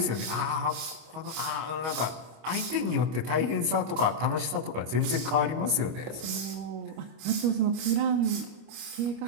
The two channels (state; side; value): late; left; 25 ms